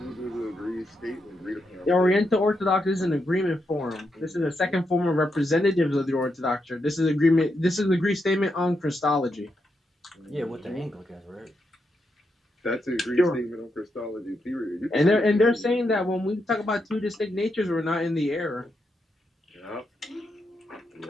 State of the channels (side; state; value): both; normal; correlation 0.83